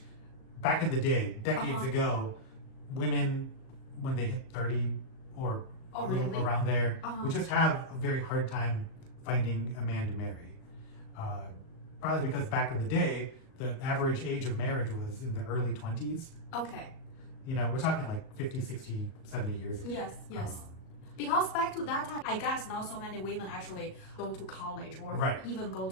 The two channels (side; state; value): right; late; 38 ms